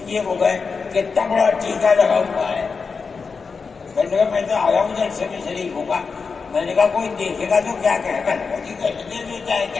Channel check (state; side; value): quieter; right; 5.0 dB